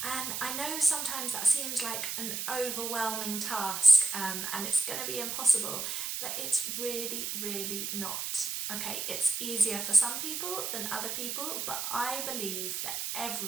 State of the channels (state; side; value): noise; right; hiss, 3 dB below the sound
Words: And I know sometimes that seems like an overwhelming task and it's going to be impossible, but it's really not. Okay, it's easier for some people than other people, but I believe that